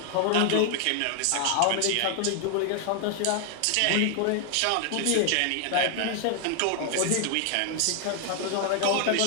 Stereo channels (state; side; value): different; both; correlation 0.00